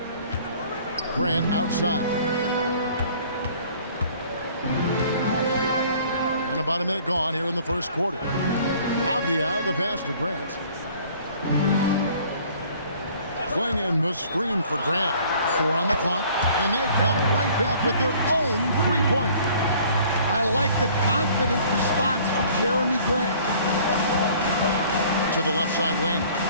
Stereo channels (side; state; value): both; inverted; correlation -0.54